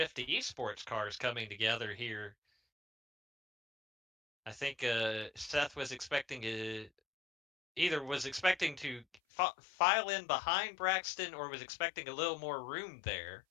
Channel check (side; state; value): right; drops out; at 9.2 s